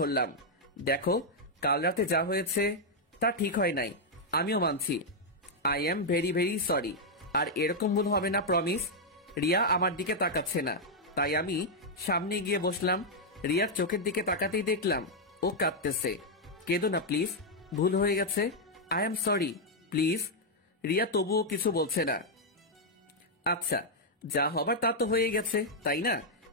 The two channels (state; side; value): normal; both; correlation -0.03